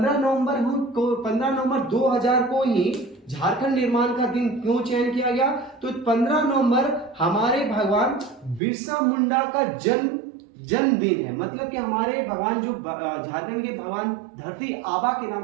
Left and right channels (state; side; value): drops out; left; at 8.6 s